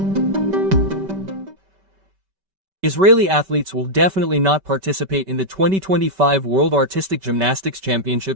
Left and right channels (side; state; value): left; late; 5.2 ms